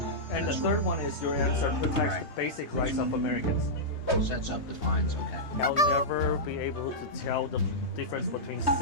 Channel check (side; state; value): right; late; 3.2 ms